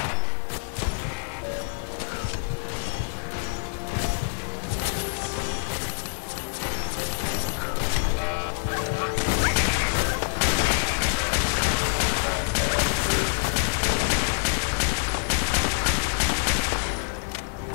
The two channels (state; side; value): silent; right; digital silence